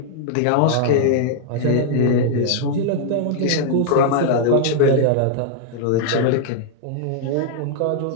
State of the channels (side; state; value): both; different; correlation -0.01